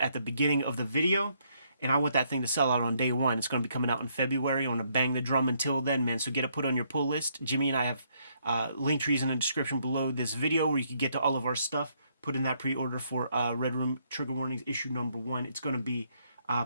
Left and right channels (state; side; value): inverted; both; correlation -0.71